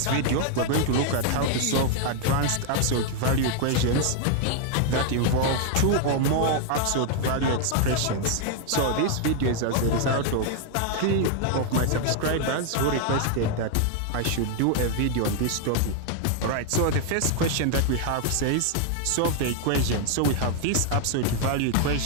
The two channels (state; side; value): different; both; correlation 0.00